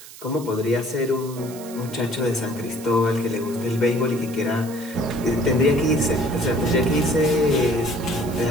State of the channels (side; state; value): right; noise; hiss, 17 dB below the sound